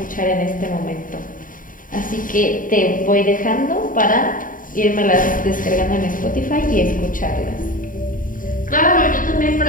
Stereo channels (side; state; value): right; late; 0.39 ms